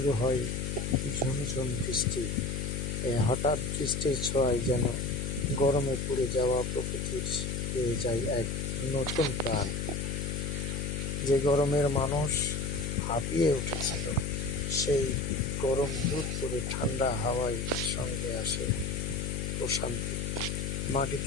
হয় ঝুমঝুম বৃষ্টি। এই হঠাৎ বৃষ্টির ছোঁয়ায় যেন গরমে পুড়ে যাওয়া প্রকৃতির পেয়ে যায় এক নতুন প্রাণ। যে গরমের মানুষ হাঁপিয়ে উঠেছিল, সেই গরম দূর করে ঠান্ডা হাওয়ায় সঙ্গে আসে প্রশান্তি।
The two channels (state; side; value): noise; left; hum, 2 dB below the sound